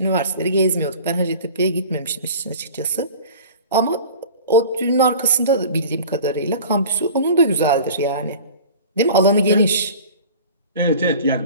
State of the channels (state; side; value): inverted; both; correlation -0.41